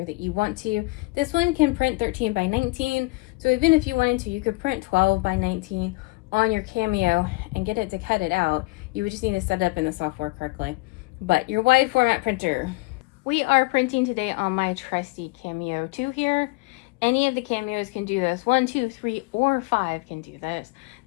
that you want to. This one can print 13 by 19, so even if you wanted to, you could print 12 by 19 on your Cameo and get it to cut it out. You would just need to set it up in the software correctly. But your wide format printer. We are printing today on my trusty Cameo 2 here. Any of the Cameos can do this. 1, 2, 3, or 5 can do this.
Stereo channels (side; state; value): right; quieter; 25.1 dB